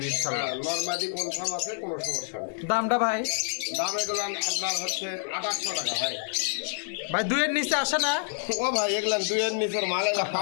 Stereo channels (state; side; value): silent; right; digital silence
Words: ইনশাআল্লাহ নরমাদি কনফার্ম আছে কোনো সমস্যা নেই দামটা ভাই দাম এগুলো আপনার হচ্ছে 2800 টাকা ভাই ভাই দুইয়ের নিচে আসে না ও ভাই এগুলো দুইয়ের নিচের মাল এগুলো